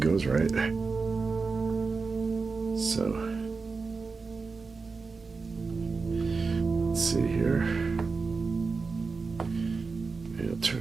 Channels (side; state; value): left; quieter; 4.4 dB